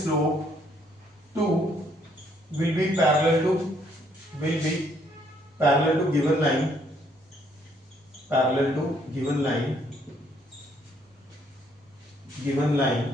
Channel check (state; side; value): normal; both; correlation 0.68